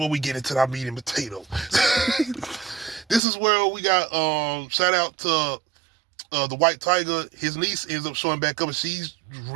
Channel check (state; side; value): drops out; left; at 3.2 s